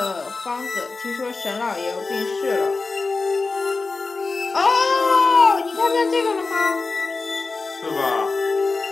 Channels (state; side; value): quieter; right; 3.9 dB